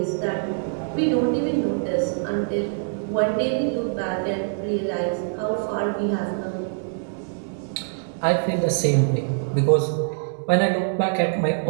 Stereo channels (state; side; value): silent; left; digital silence